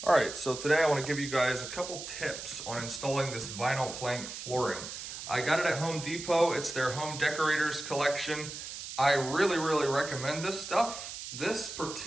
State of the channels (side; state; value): right; noise; hiss, 9 dB below the sound